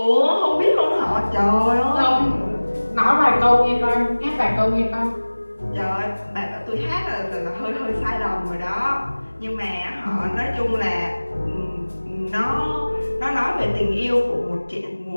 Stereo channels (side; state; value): both; inverted; correlation -1.00